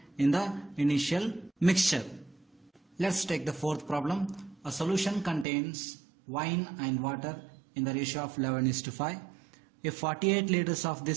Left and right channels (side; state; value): left; drops out; at 5.5 s